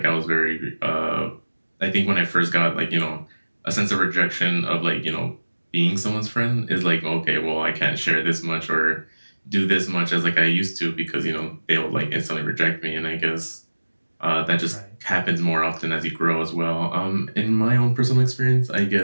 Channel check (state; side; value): inverted; both; correlation -1.00